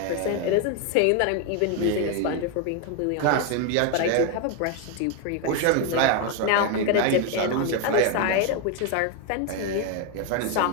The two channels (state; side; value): different; both; correlation 0.01